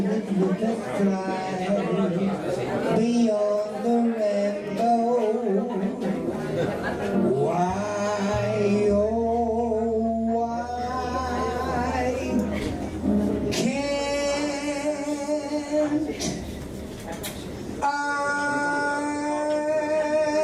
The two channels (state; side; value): identical; both; correlation 1.00